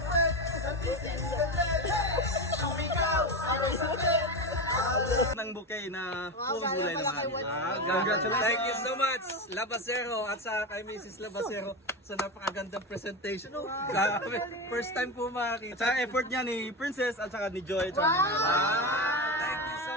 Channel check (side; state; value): both; normal; correlation 0.18